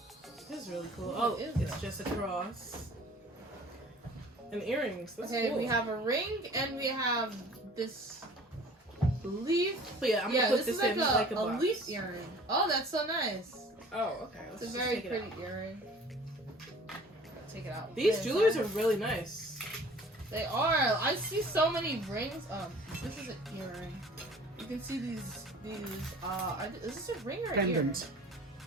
This is really cool. Oh, it's just a cross. And earrings. That's cool. We have a ring and we have this leaf. But yeah, I'm gonna put this in like a box. Leaf earring. Oh, that's so nice. Oh, okay. It's a very pretty earring. Take it out. These jewelers are really nice. They are. I see so many rings. This is an earring. You can see these. Is this a ring or an earring?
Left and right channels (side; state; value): both; normal; correlation 0.48